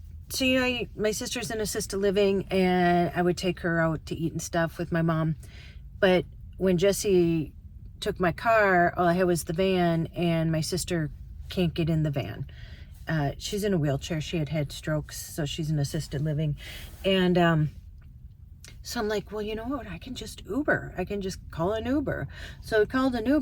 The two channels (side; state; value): both; identical; correlation 1.00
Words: so my sister's in assisted living, and I would take her out to eat and stuff with my mom, but when Jesse took my car, all I had was the van, and my sister can't get in the van. She's in a wheelchair. She had strokes, so she's in assisted living. And so I'm like, well, you know what? I can just Uber. I can just call an Uber. So I called an